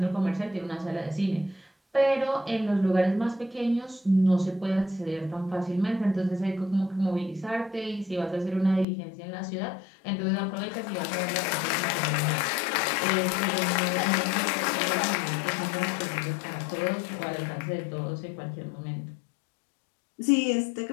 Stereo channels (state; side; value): drops out; right; at 8.8 s